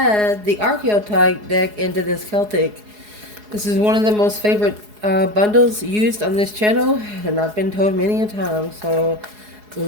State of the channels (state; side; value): late; left; 4.8 ms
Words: the Archeotype deck into this Celtic. This is one of the most favorite bundles used on this channel, and I've been told many a time. So